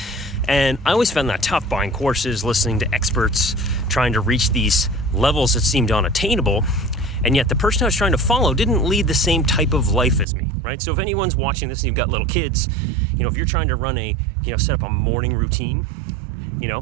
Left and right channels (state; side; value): drops out; left; at 10.2 s